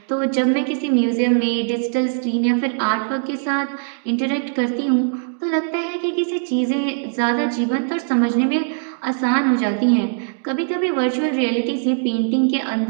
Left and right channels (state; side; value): silent; left; digital silence